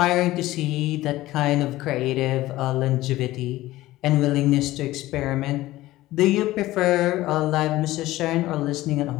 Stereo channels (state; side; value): quieter; right; 16.8 dB